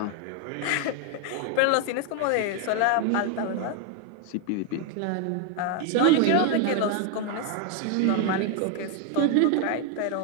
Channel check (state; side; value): different; both; correlation 0.01